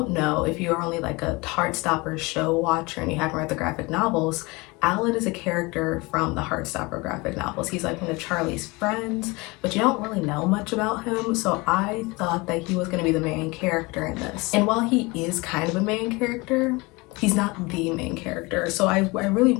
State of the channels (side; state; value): right; quieter; 24.8 dB